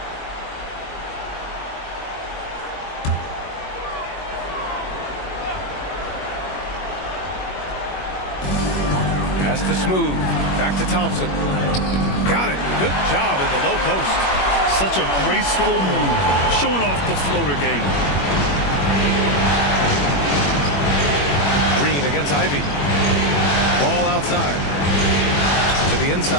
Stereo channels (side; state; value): right; late; 21 ms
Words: Pass to Smooth. Back to Thompson. Got it. Good job in the low post. Such a graceful move. Showing off the floater game. Green against Ivy. outside. To the